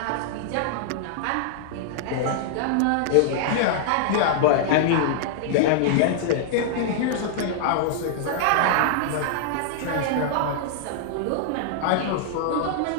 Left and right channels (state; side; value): different; both; correlation -0.01